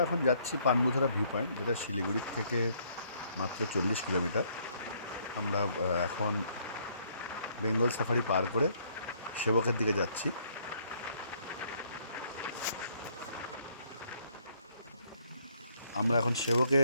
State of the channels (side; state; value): both; inverted; correlation -0.67